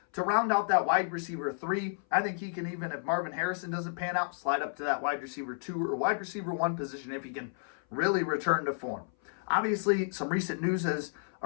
to round out that wide receiver 3. I think he can, even if Marvin Harrison doesn't pan out, slide up to that wide receiver 2 or wide receiver 1 position if he can really return to form. Obviously, some recent news has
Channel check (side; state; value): right; silent; 57 dB below the other